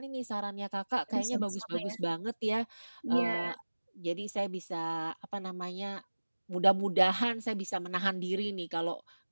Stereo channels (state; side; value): inverted; both; correlation -1.00